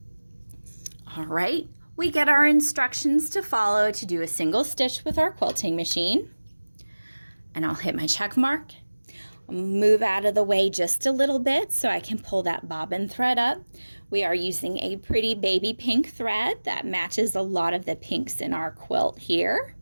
All right. We get our instructions to follow to do a single stitch with our quilting machine. And I'll hit my check mark. I'll move out of the way just a little bit so I can pull that bobbin thread up. We are using a pretty baby pink thread that matches a lot of the pinks in our quilt here.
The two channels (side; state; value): both; inverted; correlation -1.00